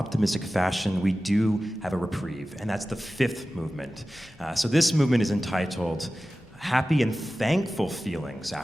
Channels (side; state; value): both; normal; correlation 0.95